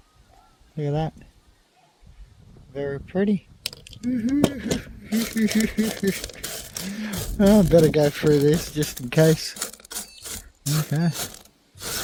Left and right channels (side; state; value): both; identical; correlation 1.00